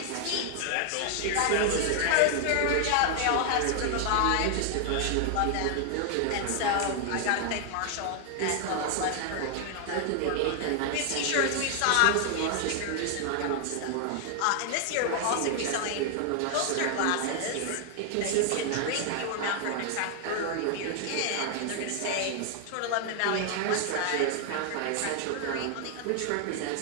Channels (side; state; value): both; different; correlation 0.00